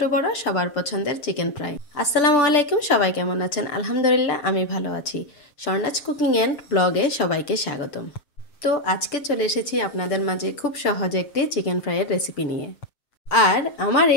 বড় সবার পছন্দের চিকেন ফ্রাই। আসসালামু আলাইকুম, সবাই কেমন আছেন? আলহামদুলিল্লাহ আমি ভালো আছি। স্বর্ণাজ কুকিং অ্যান্ড ব্লগে সবাইকে স্বাগতম। তো আজকে চলে এসেছি আপনাদের মাঝে খুব সহজ একটি চিকেন ফ্রাইয়ের রেসিপি নিয়ে। আর আমার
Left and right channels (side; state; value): right; late; 7.6 ms